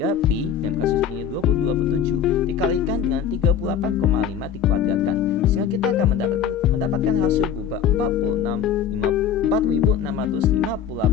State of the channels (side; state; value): right; quieter; 8.2 dB